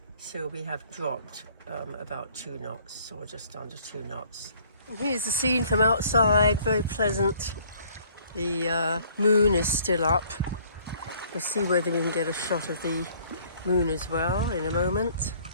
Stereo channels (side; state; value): both; inverted; correlation -0.59